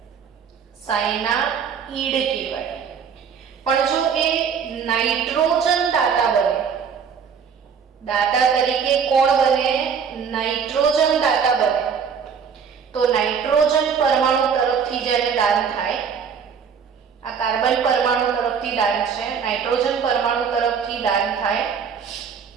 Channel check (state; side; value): quieter; left; 6.7 dB